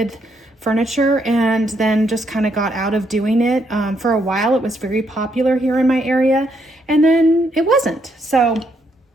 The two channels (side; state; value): both; normal; correlation 0.75